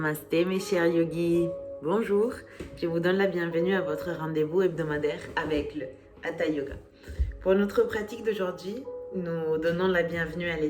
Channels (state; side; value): identical; both; correlation 1.00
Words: mes chers yogis, bonjour, je vous donne la bienvenue à votre rendez-vous hebdomadaire avec le Hatha Yoga. Pour notre pratique d'aujourd'hui, nous donnons la bienvenue à